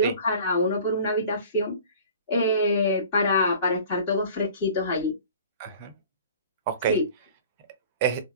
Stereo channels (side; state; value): both; inverted; correlation -0.44